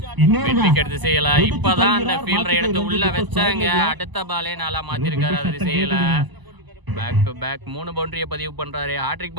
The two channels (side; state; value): left; late; 1.0 ms